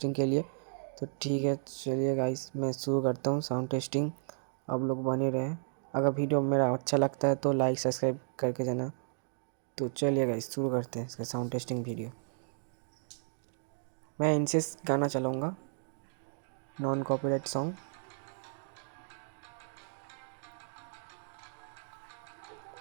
के लिए। तो ठीक है, चलिए गाइस मैं शुरू करता हूँ साउंड टेस्टिंग। आप लोग बने रहें। अगर वीडियो मेरा अच्छा लगता है तो लाइक सब्सक्राइब करके जाना। तो चलिए गाइस शुरू करते हैं इसका साउंड टेस्टिंग वीडियो। मैं इनसे गाना चलाऊँगा, नॉन कॉपीराइट सॉन्ग।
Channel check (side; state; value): left; silent; digital silence